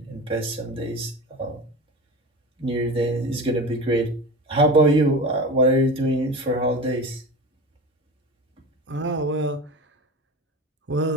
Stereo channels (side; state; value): both; normal; correlation 0.30